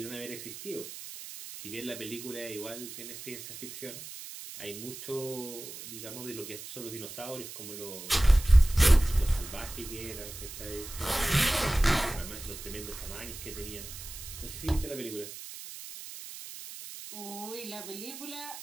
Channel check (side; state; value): right; noise; hiss, 11 dB below the sound